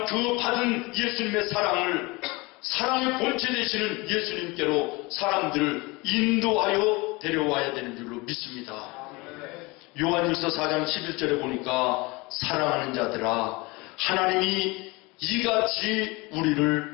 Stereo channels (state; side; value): quieter; right; 24.6 dB